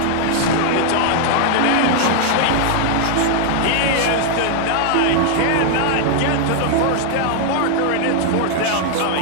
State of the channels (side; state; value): both; different; correlation 0.00